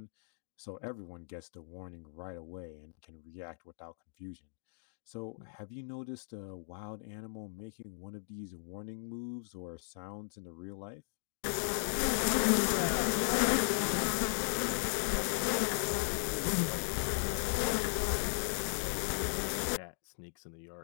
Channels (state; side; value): silent; right; digital silence